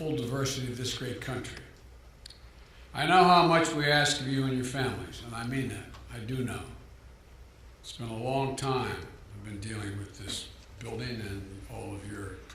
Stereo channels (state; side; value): identical; both; correlation 1.00